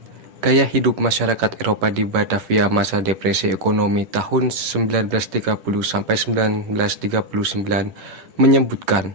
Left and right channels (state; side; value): late; left; 10 ms